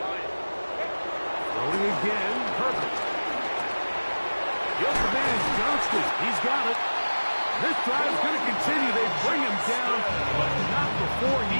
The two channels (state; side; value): inverted; both; correlation -1.00